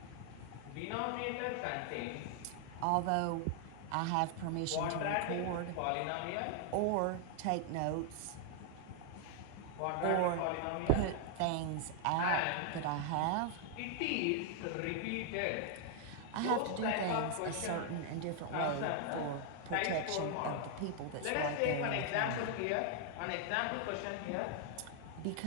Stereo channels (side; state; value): both; different; correlation 0.00